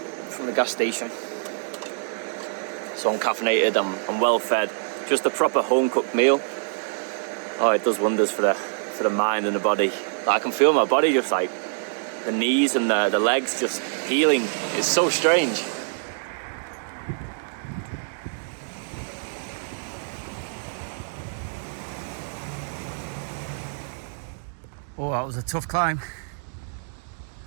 from the gas station. So I'm caffeinated, I'm well fed. Just a proper home cooked meal. Oh, it does wonders for the mind and the body. Like, I can feel my body just like the knees and the legs just healing. It's so strange. Oh, that was a tough climb.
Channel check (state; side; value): silent; left; digital silence